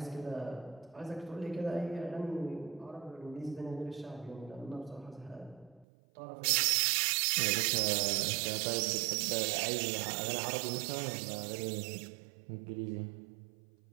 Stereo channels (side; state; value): left; drops out; at 5.9 s